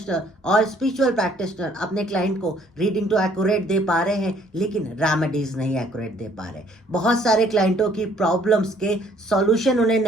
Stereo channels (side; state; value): both; normal; correlation 0.61